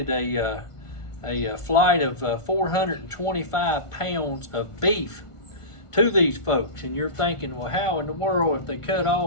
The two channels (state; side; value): late; right; 1.4 ms